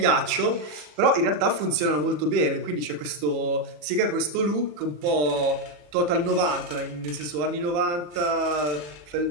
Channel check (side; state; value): left; late; 40 ms